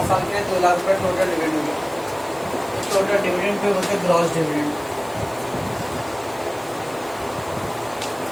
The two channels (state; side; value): noise; left; hiss, 22 dB below the sound